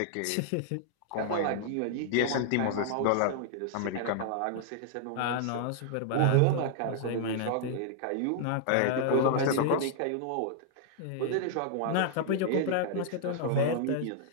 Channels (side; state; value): both; different; correlation -0.01